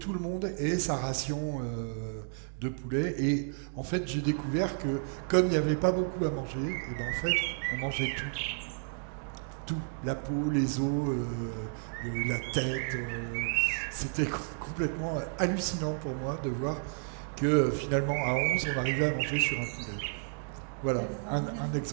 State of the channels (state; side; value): silent; left; digital silence